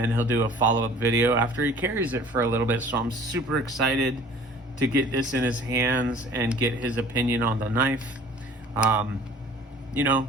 he'll do a follow-up video after he carries it for a little bit. So I'm super excited to get this in his hands and get his opinion on the knife. You know,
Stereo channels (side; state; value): both; normal; correlation 0.49